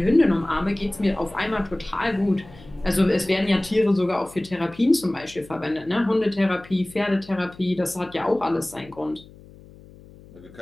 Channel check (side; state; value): left; noise; hum, 21 dB below the sound